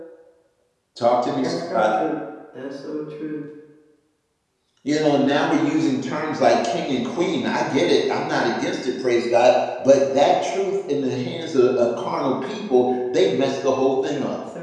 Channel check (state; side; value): identical; both; correlation 1.00